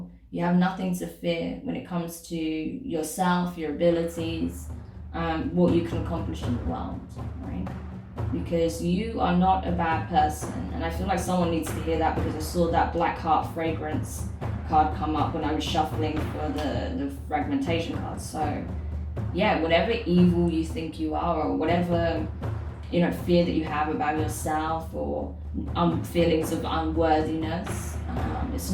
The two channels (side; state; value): both; identical; correlation 1.00